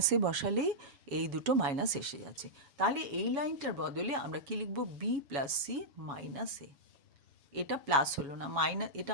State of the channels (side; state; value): left; late; 7.1 ms